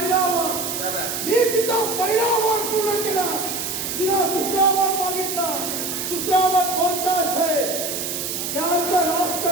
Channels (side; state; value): right; noise; hiss, 4 dB below the sound